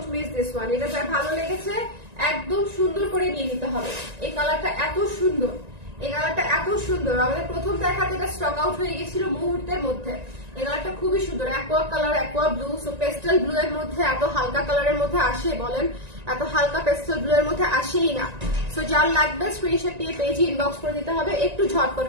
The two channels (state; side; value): late; left; 1.9 ms